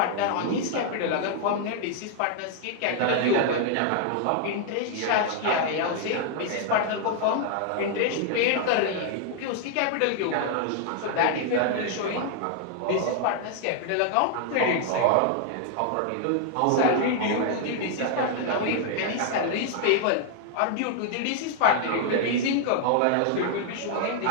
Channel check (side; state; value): both; different; correlation -0.01